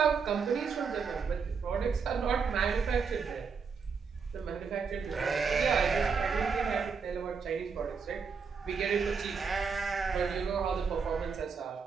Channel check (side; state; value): left; quieter; 5.6 dB